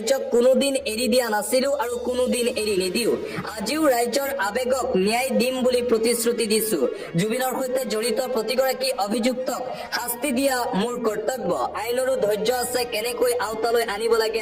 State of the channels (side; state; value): both; identical; correlation 1.00